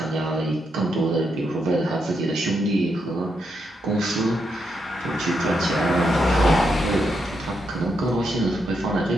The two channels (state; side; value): normal; both; correlation 0.81